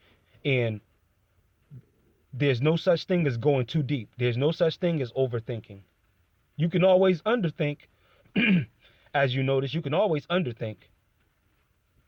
And there's no such thing as going too deep. There's no such thing as overthinking. You can always underthink. As you notice, you can always underthink.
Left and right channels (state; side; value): identical; both; correlation 1.00